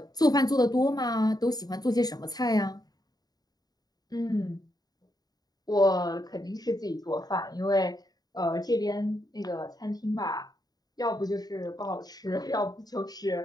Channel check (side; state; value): right; late; 0.19 ms